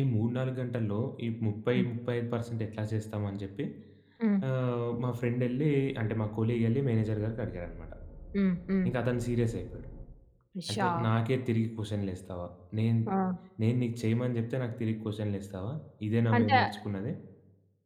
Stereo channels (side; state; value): both; identical; correlation 1.00